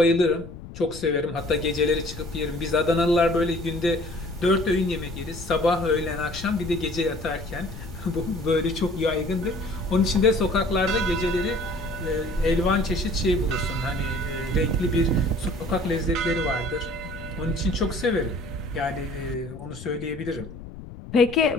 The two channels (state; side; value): noise; left; rumble, 14 dB below the sound